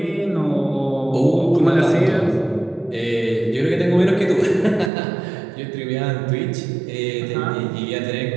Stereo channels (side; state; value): left; drops out; at 4.9 s